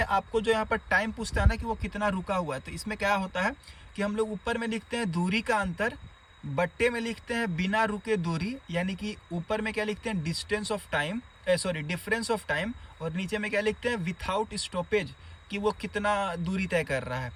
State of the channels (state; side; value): identical; both; correlation 1.00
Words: आपको जो यहाँ पर टाइम पूछता है ना कि वो कितना रुका हुआ है, तो इसमें क्या होता है कि हम लोग ऊपर में लिखते हैं दूरी का अंतर, बट्टे में लिखते हैं बिना रुके दूरी, यानी कि ऊपर में क्या लिखते हैं distance of time, difference of time, और नीचे में क्या लिखते हैं विथआउट स्टॉपेज, कि वो कितना दूरी तय कर रहा है